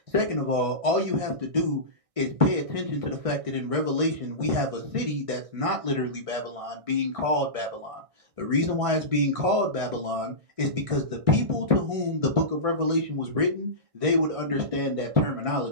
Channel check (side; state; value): left; late; 1.6 ms